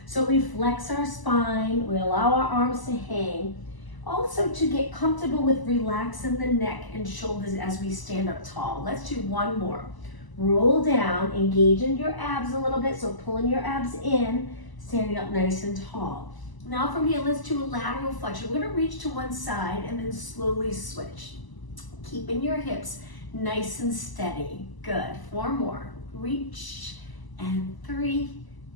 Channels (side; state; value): right; late; 1.0 ms